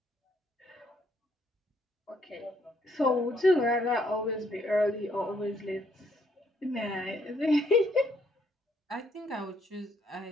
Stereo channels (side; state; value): both; normal; correlation 0.70